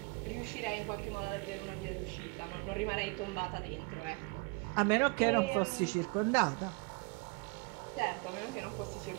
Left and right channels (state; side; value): quieter; left; 29.1 dB